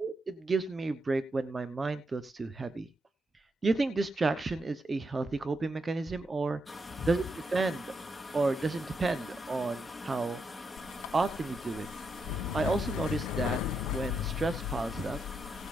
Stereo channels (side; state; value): both; normal; correlation 0.82